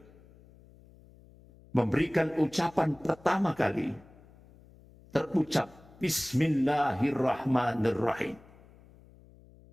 memberikan ucapan pertama kali, terucap Bismillahirrahmanirrahim.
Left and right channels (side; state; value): left; noise; hum, 25 dB below the sound